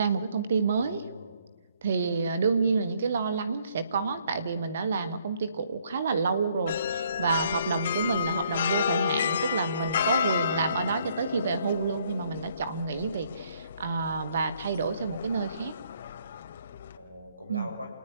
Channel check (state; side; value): inverted; both; correlation -0.67